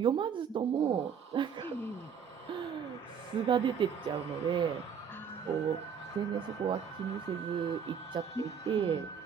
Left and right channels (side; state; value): left; quieter; 7.2 dB